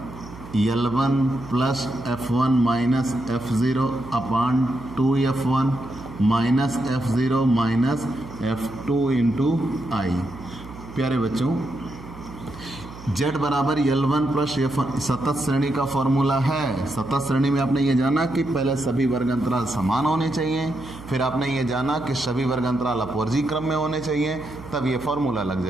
L1 plus F1 minus F0 upon 2F1 minus F0 minus F2 into I. प्यारे बच्चों, Z बराबर L1 प्लस F1 शतत श्रेणी का फॉर्मूला है। शतत श्रेणी में आपने ये जाना कि पहले सभी वर्ग अंतराल समान होने चाहिए, फिर आपने ये जाना कि सभी वर्ग अंतराल अपवर्जी क्रम में होने चाहिए, तब ये फॉर्मूला लग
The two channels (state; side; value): noise; right; hum, 16 dB below the sound